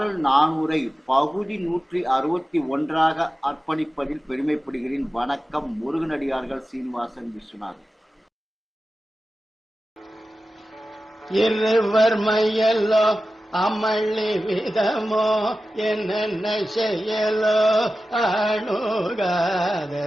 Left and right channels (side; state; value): both; normal; correlation 0.94